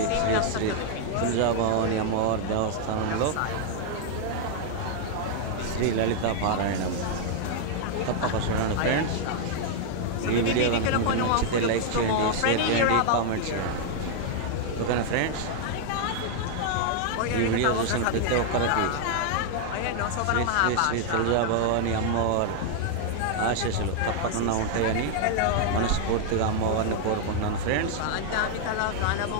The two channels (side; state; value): both; different; correlation 0.00